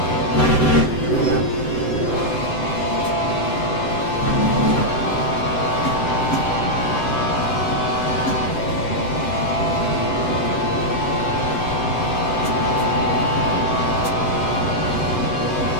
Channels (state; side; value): late; right; 7.8 ms